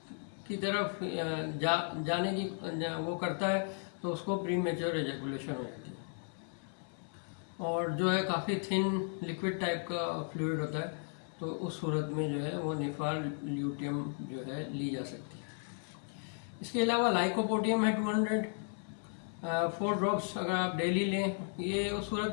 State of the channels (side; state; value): right; silent; 54 dB below the other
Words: की तरफ जाने की वो करता है, तो उसको प्री मेच्योर एजैकुलेशन हो जाती है। और जो है काफ़ी थिन लिक्विड टाइप का फ्लूइड होता है, तो उस सूरत में जो है वो निफार ल्यूटियम जो है ली जा सकती है। इसके अलावा लाइकोपोडियम है 200 4 ड्रॉप्स अगर आप डेली लें। ये उस